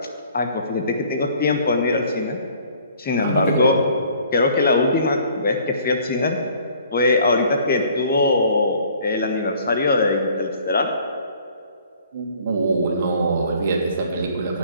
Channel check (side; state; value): both; inverted; correlation -0.55